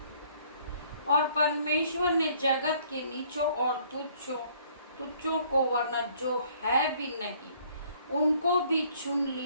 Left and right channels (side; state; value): both; inverted; correlation -0.60